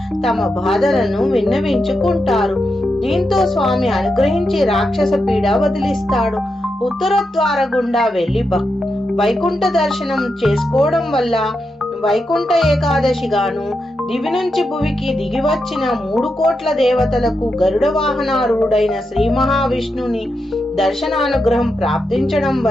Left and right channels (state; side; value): normal; both; correlation 0.86